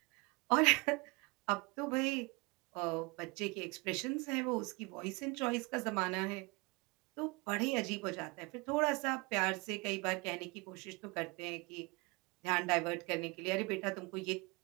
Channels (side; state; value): left; quieter; 27.1 dB